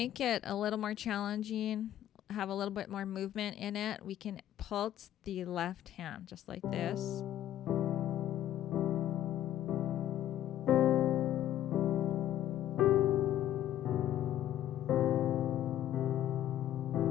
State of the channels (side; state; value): right; quieter; 12.1 dB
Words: it a little more challenging, have a little bit more movement in it, we can pulse the left hand just like this.